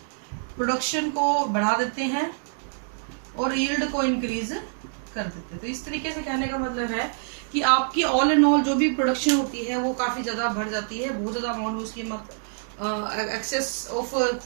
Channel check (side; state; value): left; silent; digital silence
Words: प्रोडक्शन को बढ़ा देते हैं और यील्ड को इंक्रीज कर देते हैं। तो इस तरीके से कहने का मतलब है कि आपकी ऑल एंड ऑल जो भी प्रोडक्शन होती है वो काफी ज्यादा बढ़ जाती है। बहुत ज्यादा अमाउंट में उसकी एक्सेस ऑफ